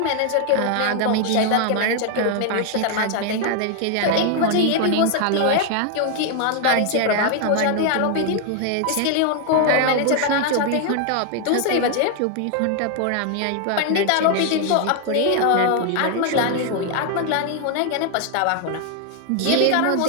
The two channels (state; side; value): different; both; correlation 0.00